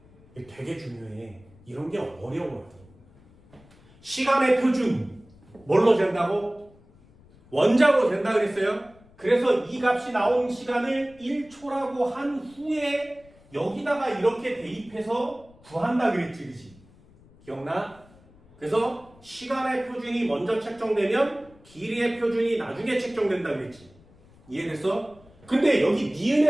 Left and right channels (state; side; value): noise; left; rumble, 26 dB below the sound